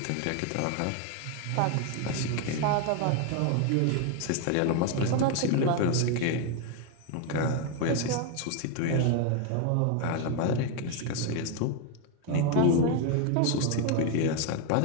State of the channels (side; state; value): both; different; correlation 0.01